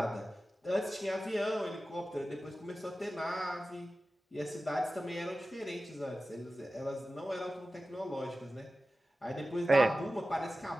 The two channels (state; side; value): normal; both; correlation 0.95